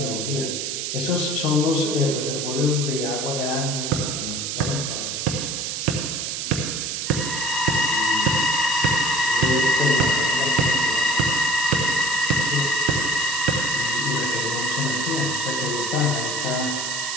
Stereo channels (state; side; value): noise; right; hiss, 3 dB below the sound